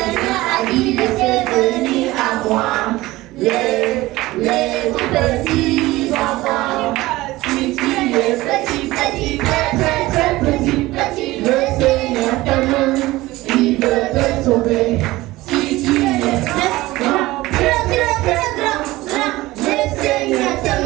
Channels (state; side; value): quieter; left; 18.6 dB